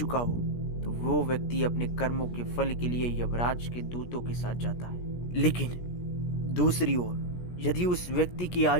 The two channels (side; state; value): right; late; 17 ms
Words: हो, तो वो व्यक्ति अपने कर्मों के फल के लिए यमराज के दूतों के साथ जाता है। लेकिन दूसरी ओर, यदि उस व्यक्ति की